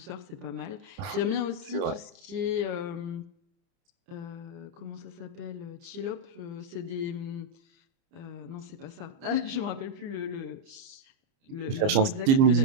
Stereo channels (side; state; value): left; late; 29 ms